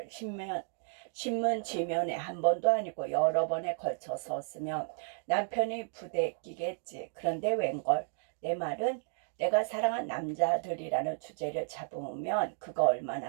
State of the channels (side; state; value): left; silent; digital silence